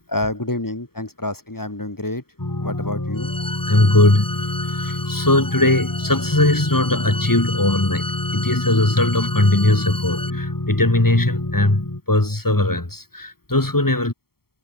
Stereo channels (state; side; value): late; right; 0.94 ms